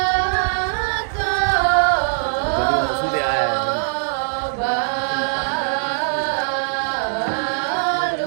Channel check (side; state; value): left; silent; digital silence